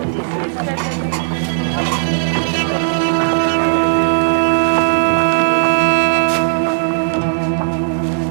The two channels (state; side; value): silent; left; digital silence